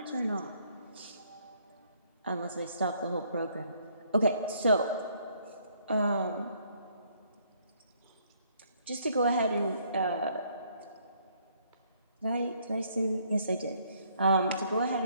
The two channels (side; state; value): both; inverted; correlation -0.66